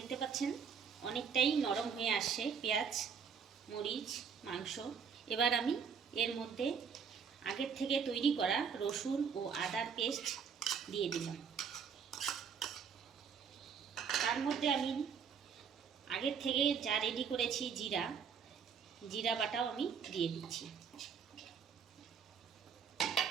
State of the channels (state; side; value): quieter; left; 6.7 dB